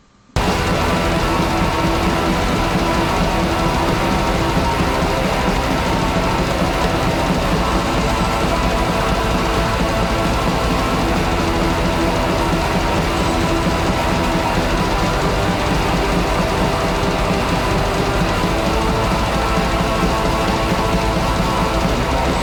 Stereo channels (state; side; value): identical; both; correlation 1.00